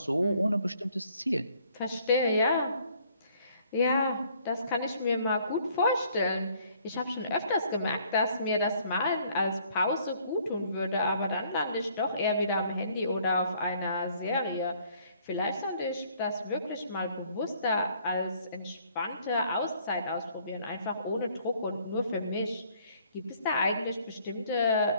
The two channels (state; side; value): inverted; both; correlation -0.62